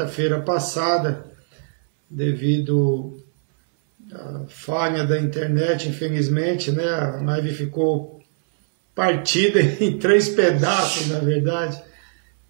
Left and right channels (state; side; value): silent; left; 65 dB below the other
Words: passada, devido à falha da internet, infelizmente, né? A live ficou partida em 3 pedaços, na verdade.